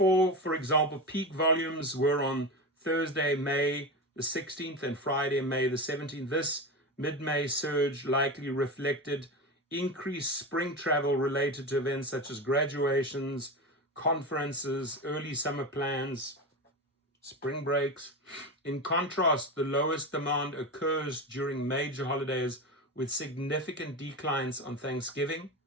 for example, peak volumes were on Thursday, May the 16th and Friday, May the 17th. This mid-May surge likely reflected increased spring travel related to events such as graduations, conferences, early summer plans, spring breaks. In contrast, the lowest demand occurs during major holidays with significant declines on Thanksgiving,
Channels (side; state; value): both; normal; correlation 0.21